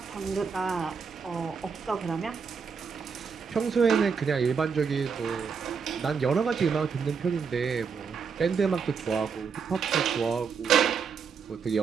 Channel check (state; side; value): quieter; left; 5.9 dB